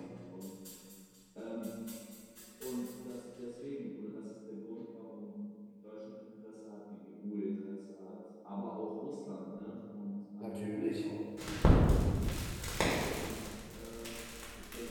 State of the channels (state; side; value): identical; both; correlation 1.00